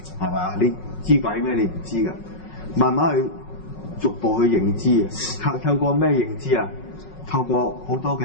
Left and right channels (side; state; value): right; late; 5.4 ms